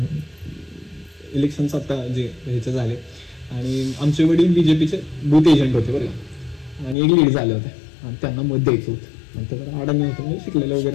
इलेक्शनचं आता जे ह्याचे झाले आणि आमचे वडील बीजेपीचे बूथ एजंट होते बरं का, आणि एक लीड झाले होते आणि त्यांना मत द्यायचं होतं. आणि त्याला अडाणी होतं, म्हणजे शिकलेलं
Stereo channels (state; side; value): drops out; right; at 7.0 s